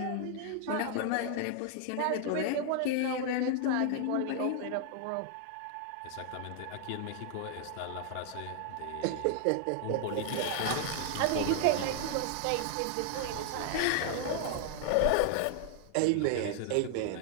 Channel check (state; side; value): different; both; correlation 0.00